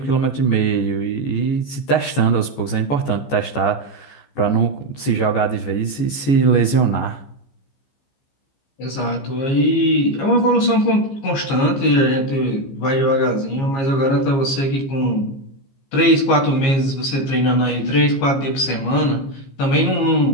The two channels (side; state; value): right; late; 14 ms